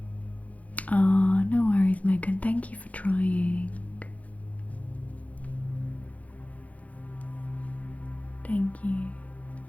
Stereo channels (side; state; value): right; late; 0.069 ms